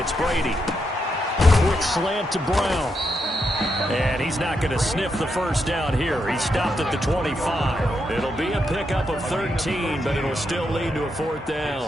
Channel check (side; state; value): both; normal; correlation 0.82